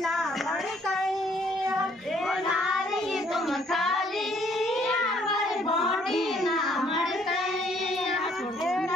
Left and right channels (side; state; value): both; normal; correlation 0.64